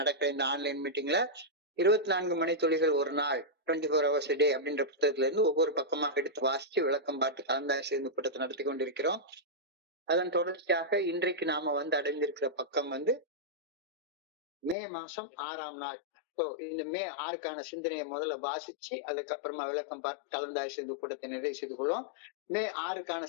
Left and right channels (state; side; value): drops out; right; at 14.8 s